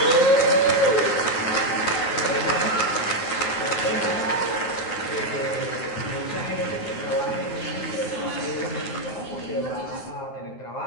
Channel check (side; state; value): right; late; 9.3 ms